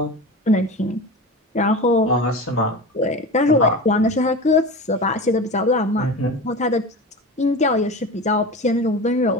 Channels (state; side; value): normal; both; correlation 0.29